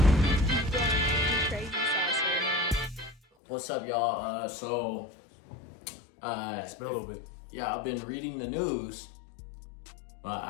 What's up, y'all? It's been a little bit. Yeah, I've been reading the news.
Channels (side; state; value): right; drops out; at 3.2 s